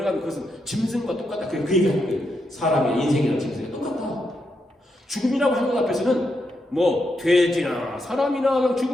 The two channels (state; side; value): normal; both; correlation 0.82